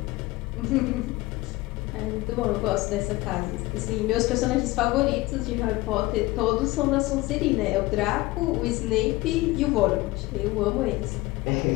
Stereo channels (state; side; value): quieter; right; 20.0 dB